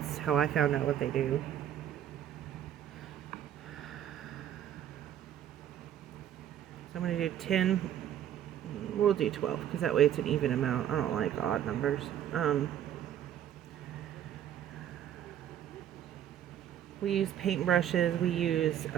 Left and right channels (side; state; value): left; quieter; 10.5 dB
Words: how I found out what they do. So I'm going to do 10, we'll do 12, because that way it's an even amount. I don't like odd numbers. We use paintbrushes, we use